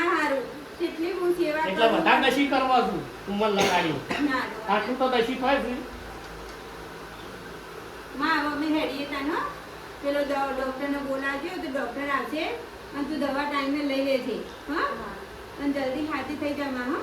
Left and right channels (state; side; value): identical; both; correlation 1.00